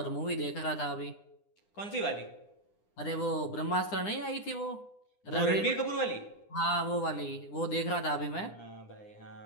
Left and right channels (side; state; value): right; late; 9.9 ms